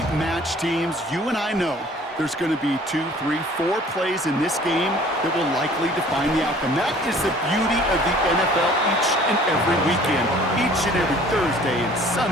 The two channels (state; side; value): normal; both; correlation 0.52